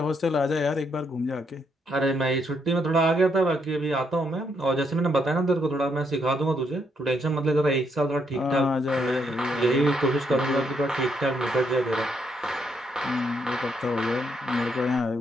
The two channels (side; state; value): both; normal; correlation 0.75